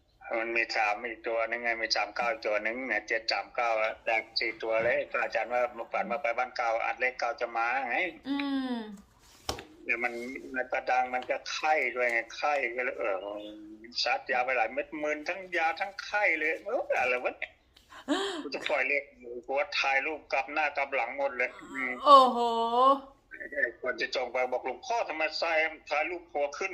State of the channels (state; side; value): identical; both; correlation 1.00